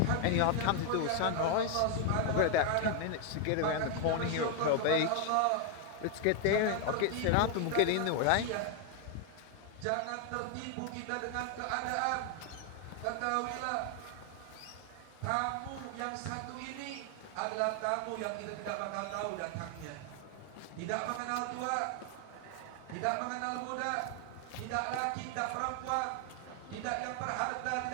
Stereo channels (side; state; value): both; different; correlation 0.01